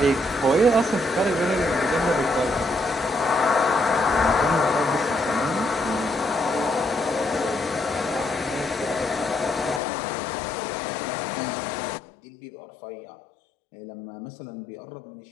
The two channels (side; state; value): right; drops out; at 9.8 s